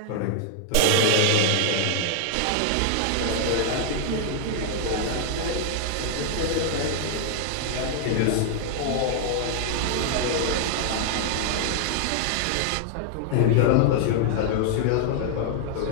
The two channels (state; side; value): different; both; correlation 0.00